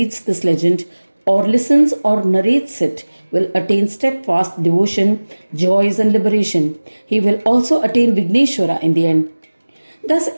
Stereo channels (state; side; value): inverted; both; correlation -1.00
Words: this legend or listens or narrates it will attain steadfast devotion, joys and liberation. He will also attain Vigneshwara in the end. Thus